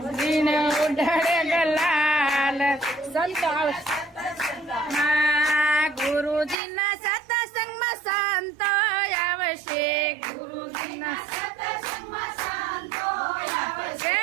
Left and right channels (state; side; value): drops out; left; at 6.6 s